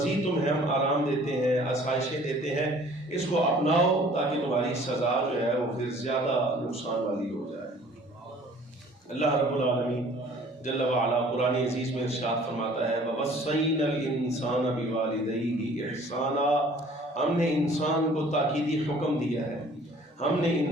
تمہیں ہم آرام دیتے ہیں, آسائشیں دیتے ہیں, اس کو اپناؤ تاکہ تمہاری سزا جو ہے وہ پھر زیادہ نقصان والی ہو جائے. اللہ رب العالمین جل وعلا قرآن عزیز میں ارشاد فرماتا ہے وَوَصَّيْنَا الْإِنسَانَ بِوَالِدَيْهِ إِحْسَانًا. ہم نے انسان کو تاکیدی حکم دیا ہے, ہم نے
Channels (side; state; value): both; normal; correlation 0.53